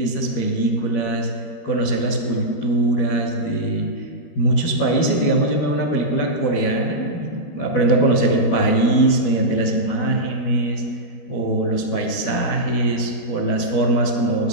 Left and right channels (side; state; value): right; late; 13 ms